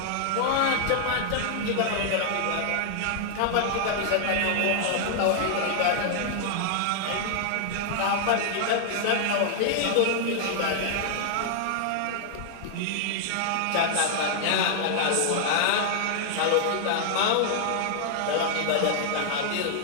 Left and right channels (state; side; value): different; both; correlation 0.00